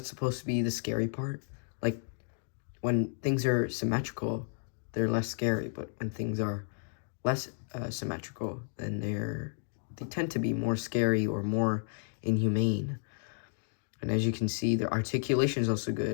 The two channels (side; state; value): right; silent; digital silence